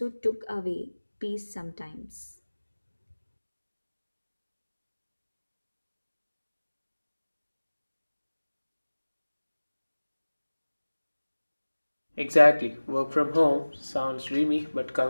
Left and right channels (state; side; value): inverted; both; correlation -1.00